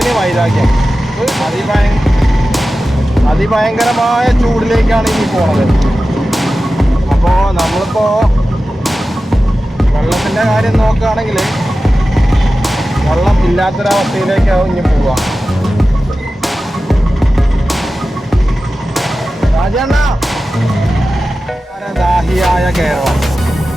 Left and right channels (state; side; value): normal; both; correlation 0.94